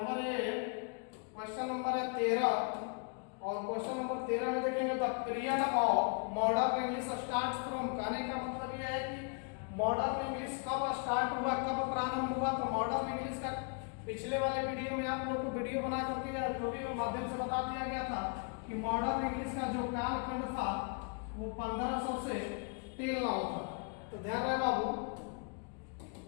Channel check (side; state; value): right; quieter; 37.0 dB